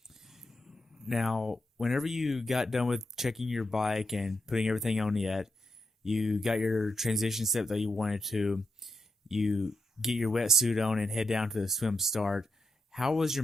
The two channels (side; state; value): both; normal; correlation 0.83